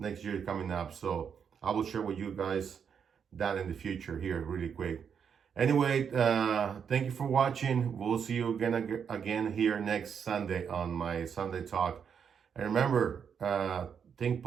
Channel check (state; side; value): quieter; left; 7.2 dB